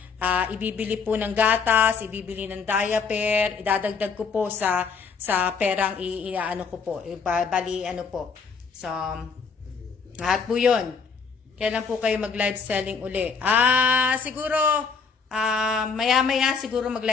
ibibili po ng gatas, ibibili ng diaper, idadagdag ko po sa perang iaano ko po. Bali, ano po. So, lahat po yun. Kailan po kayo mag-live selling uli? Siguro, maya-maya siguro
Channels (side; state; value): right; quieter; 5.5 dB